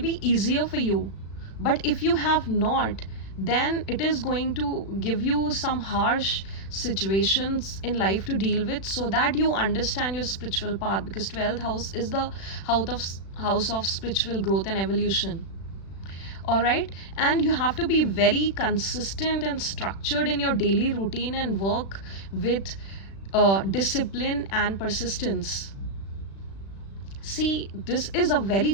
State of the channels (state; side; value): late; right; 36 ms